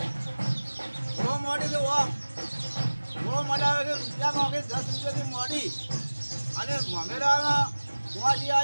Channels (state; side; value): inverted; both; correlation -1.00